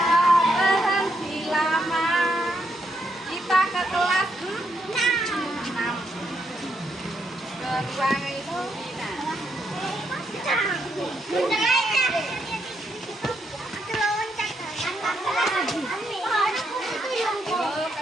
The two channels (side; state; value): both; normal; correlation 0.78